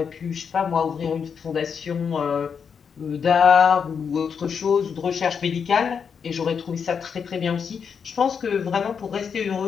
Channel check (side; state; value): right; quieter; 6.6 dB